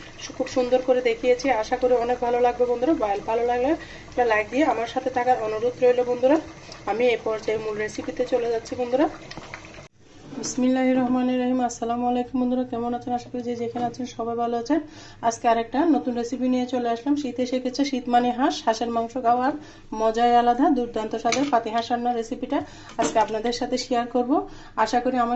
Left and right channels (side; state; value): both; identical; correlation 1.00